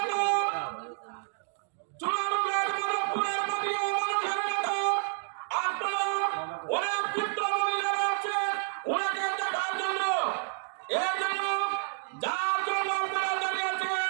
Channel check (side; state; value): left; silent; digital silence